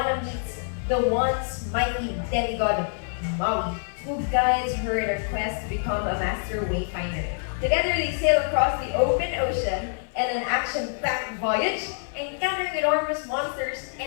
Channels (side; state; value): right; silent; digital silence